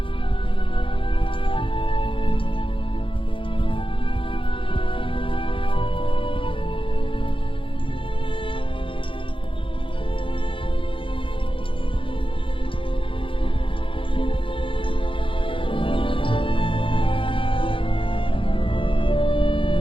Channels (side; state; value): right; late; 0.25 ms